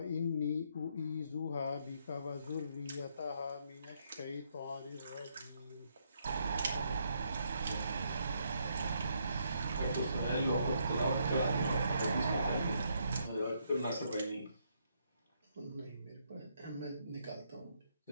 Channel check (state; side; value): inverted; both; correlation -0.74